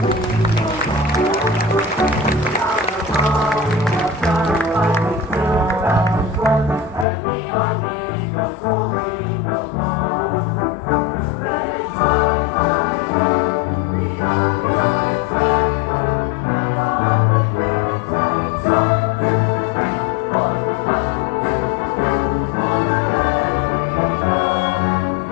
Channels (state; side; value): drops out; right; at 7.1 s